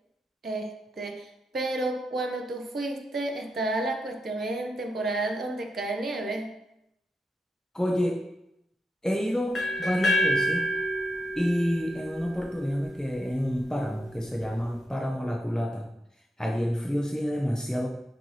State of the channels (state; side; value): normal; both; correlation 0.85